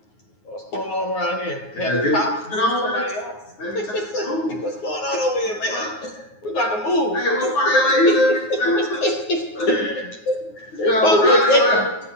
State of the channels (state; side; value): late; right; 9.5 ms